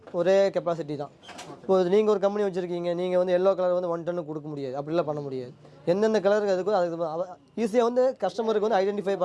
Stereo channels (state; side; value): identical; both; correlation 1.00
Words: ஒரே கெப்பாசிட்டி தான். இப்போ நீங்கள் ஒரு கம்பெனி வச்சுருக்கீங்க, நீங்கள் வந்து எல்லோ கலர் வந்து 1 டன்னு கொடுக்க முடியாது, அப்படிலாம் பண்ண முடியாது. எந்தெந்த கலருக்கு அதுக்கு ஈஸியாக வந்து கஸ்டமருக்கு வந்து ஐடென்டிஃபை